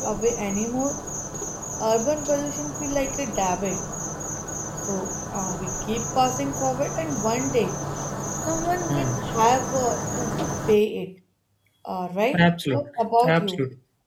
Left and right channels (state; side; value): identical; both; correlation 1.00